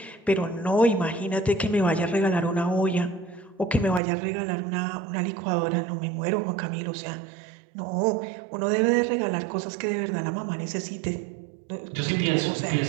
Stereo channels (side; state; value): left; drops out; at 4.0 s